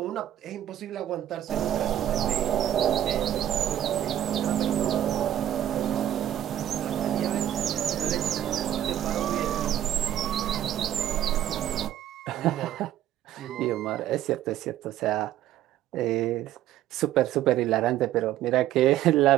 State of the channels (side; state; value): left; quieter; 11.9 dB